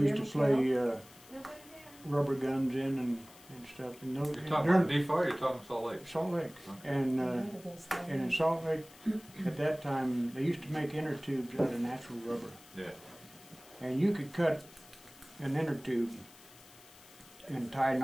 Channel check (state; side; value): noise; left; hiss, 22 dB below the sound